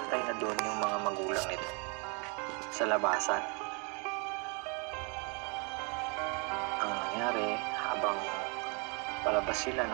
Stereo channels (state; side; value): quieter; left; 33.7 dB